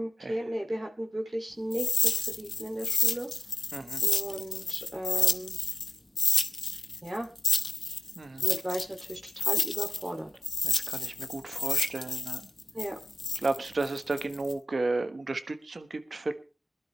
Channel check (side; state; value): both; normal; correlation 0.89